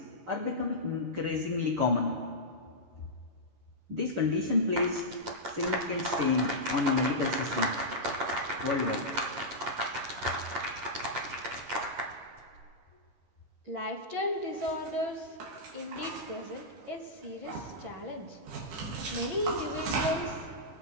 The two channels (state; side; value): late; left; 11 ms